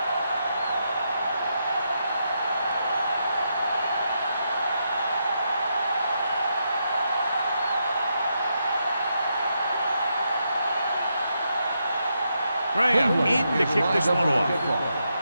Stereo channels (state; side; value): inverted; both; correlation -0.82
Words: Graham in to kick this one off.